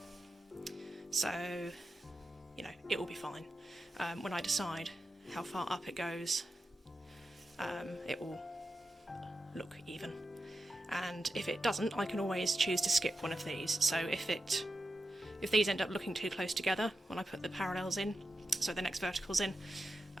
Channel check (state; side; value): normal; both; correlation 0.90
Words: So, you know, it will be fine. When I decide how far up it goes, it will look even. And if it doesn't, I can always choose to skip one of these. So if these end up looking too close together when I put the parallels in, so the next verticals in,